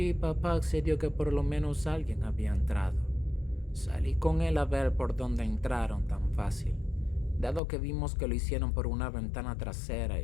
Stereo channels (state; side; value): drops out; right; at 7.6 s